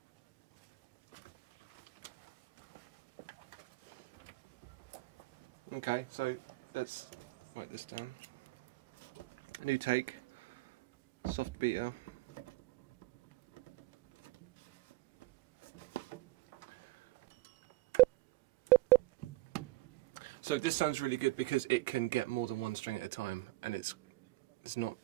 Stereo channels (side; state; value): left; quieter; 19.3 dB